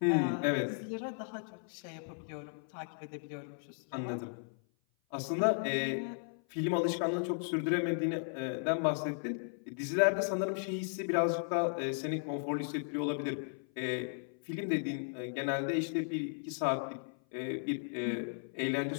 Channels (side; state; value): right; silent; 54 dB below the other